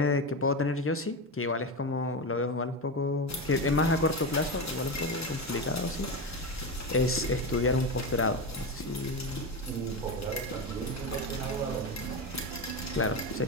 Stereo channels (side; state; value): both; normal; correlation 0.17